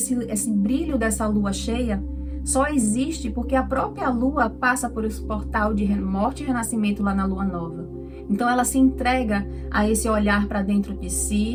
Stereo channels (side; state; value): both; identical; correlation 1.00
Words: brilho dessa lua cheia, só existe porque a própria lua passa por esse portal de morte e renascimento lá na lua nova. Então ela se entrega a esse olhar para dentro de